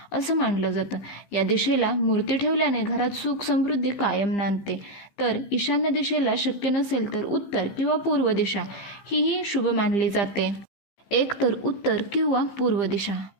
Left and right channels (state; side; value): late; right; 15 ms